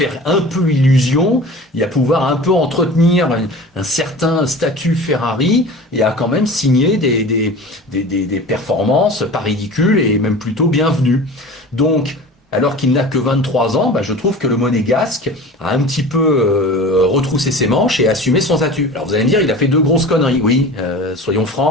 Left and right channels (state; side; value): normal; both; correlation 0.37